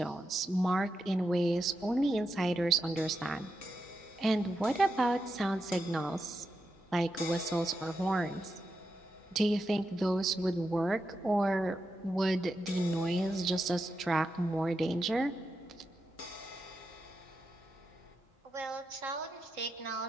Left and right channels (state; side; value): normal; both; correlation 0.86